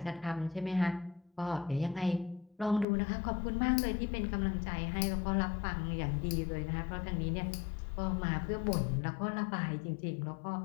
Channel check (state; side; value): drops out; right; at 2.9 s